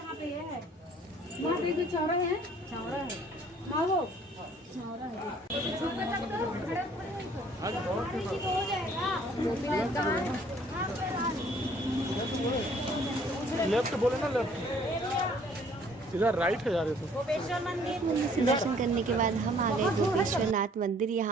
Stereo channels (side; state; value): both; normal; correlation 0.58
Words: पे है, वहाँ पे जो चौरा है, हाँ वो चौरा है। लेफ्ट बोले ना, लेफ्ट इधर राइट है यार। गोपेश्वर मंदिर दर्शन करने के बाद हम आ गए गोपेश्वर नाथ मंदिर।